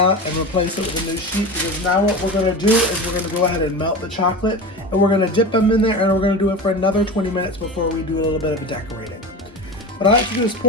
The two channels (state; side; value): normal; both; correlation 0.28